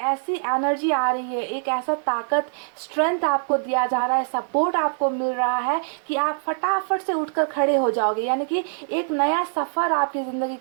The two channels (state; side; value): silent; left; digital silence